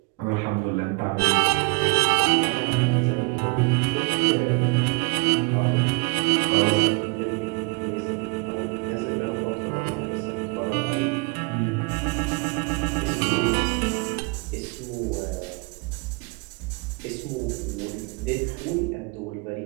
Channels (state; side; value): quieter; left; 29.8 dB